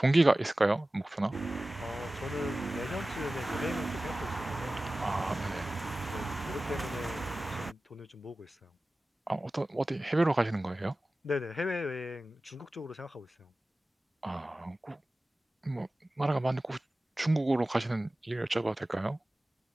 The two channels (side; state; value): both; normal; correlation 0.96